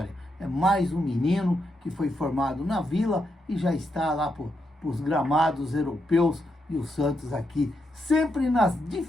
É mais um menino que foi formado na Vila e já está lá para os gramados europeus, e o Santos aqui sempre nas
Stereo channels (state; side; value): normal; both; correlation 0.82